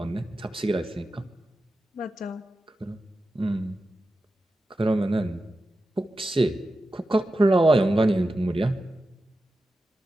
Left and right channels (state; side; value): normal; both; correlation 0.92